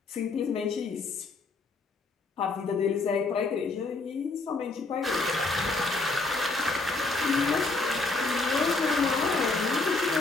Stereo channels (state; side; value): quieter; right; 3.5 dB